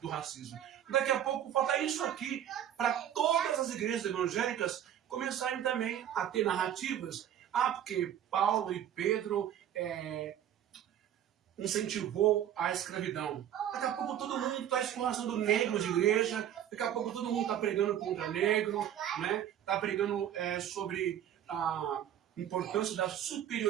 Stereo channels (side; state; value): left; quieter; 10.5 dB